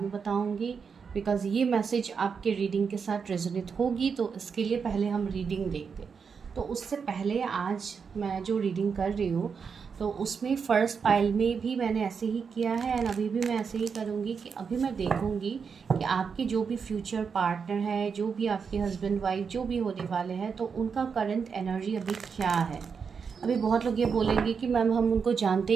में बताऊँगी बिकॉज़ ये मैसेज आपके रीडिंग के साथ रेजोनेट होगी। तो इसके लिए पहले हम रीडिंग देखते हैं। तो उससे पहले आज मैं जो रीडिंग कर रही हूँ तो उसमें फ़र्स्ट पाइल में भी मैंने ऐसे ही किया है एंड अभी भी मैं ऐसे ही करूँगी कि अभी मैं देखूँगी कि आपके जो भी फ्यूचर पार्टनर है, जो भी आपके हस्बैंड वाइफ जो भी होने वाले हैं, तो उनका करंट एनर्जी अभी क्या है। अभी बहुत लोग ये बोलेंगे कि मैम हम उनको जानते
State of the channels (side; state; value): left; quieter; 6.0 dB